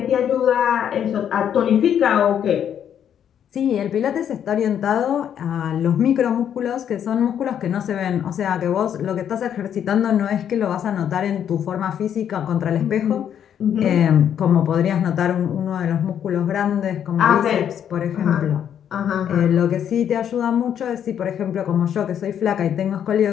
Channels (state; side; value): quieter; right; 9.2 dB